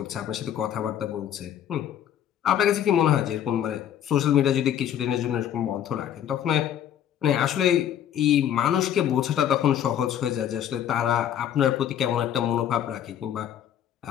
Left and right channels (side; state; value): right; quieter; 10.2 dB